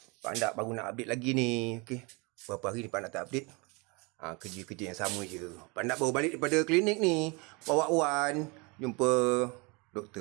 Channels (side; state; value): left; quieter; 28.9 dB